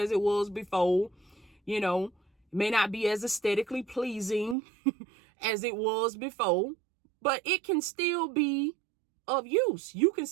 it was before. You know, it may not be as aesthetically pleasing as it was before, but it can still be of use. You can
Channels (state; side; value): drops out; left; at 4.5 s